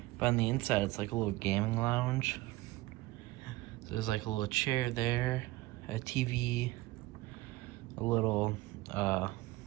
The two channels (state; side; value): quieter; left; 19.3 dB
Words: but on the inside it's like a little gaming lounge. So there's like a little chair there, a TV, a little